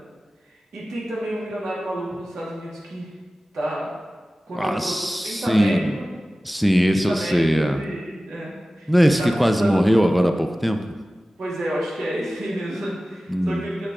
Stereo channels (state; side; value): normal; both; correlation 0.96